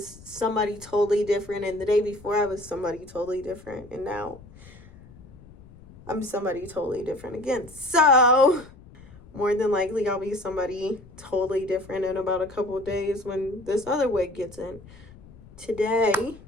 somebody totally different, and the day before I was somebody totally different, and now I'm somebody totally different again. So more than likely I'll be somebody totally different in about a couple of days when this other wig gets in. Today,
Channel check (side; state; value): left; noise; rumble, 21 dB below the sound